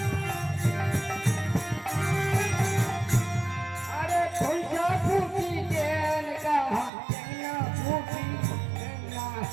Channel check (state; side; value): drops out; left; at 6.9 s